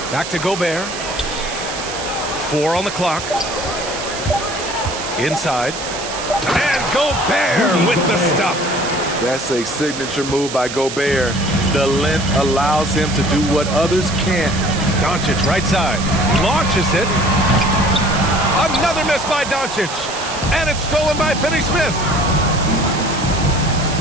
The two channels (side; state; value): right; noise; hiss, 8 dB below the sound